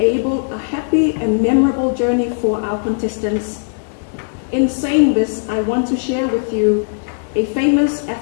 a happy and memorable journey for our contestants. In saying this, I want to share with you a famous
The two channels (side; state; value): right; silent; digital silence